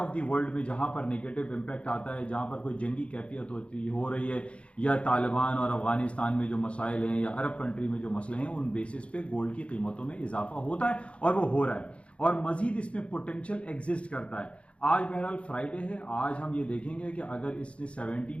the world में जहां पर नेगेटिव इंपैक्ट आता है, जहां पर कोई जंगी कैफियत हो रही है, या तालिबान और अफगानिस्तान में जो मसाइल हैं या अरब कंट्री में जो मसले हैं, उन बेसिस पे गोल्ड की कीमतों में इजाफा होता है, और वो हो रहा है, और मजीद इसमें पोटेंशियल एग्जिस्ट करता है। आज बहरहाल फ्राइडे है, आज हम ये देखेंगे कि अगर इसने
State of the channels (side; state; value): right; late; 0.060 ms